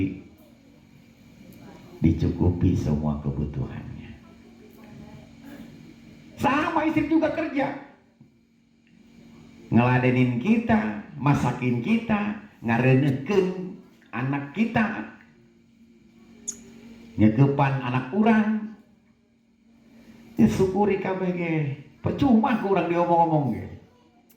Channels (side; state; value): both; identical; correlation 1.00